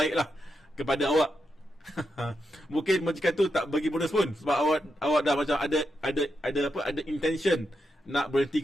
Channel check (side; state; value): both; normal; correlation 0.85